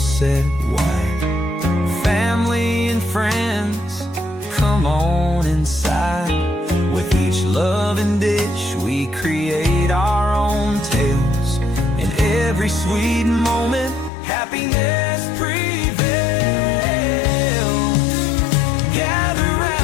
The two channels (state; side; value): drops out; right; at 14.1 s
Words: set wide. Family and friends, come on inside. With each loving dish, we create our own tales. In every sweet moment, happiness prevails. Gather